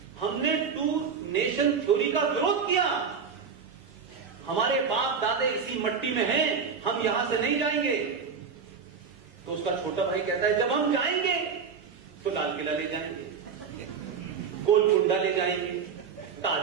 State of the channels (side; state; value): left; quieter; 6.1 dB